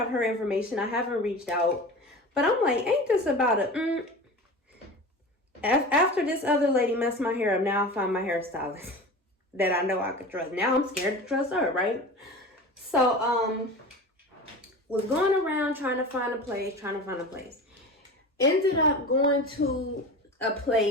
her information. I haven't reached out, but I'm like, ain't this about after this other lady messed my hair up, now I find my hairstylist that I know I could trust. Now I'm scared to trust her, right? So was going around trying to find a place. Ended up going to a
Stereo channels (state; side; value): normal; both; correlation 0.33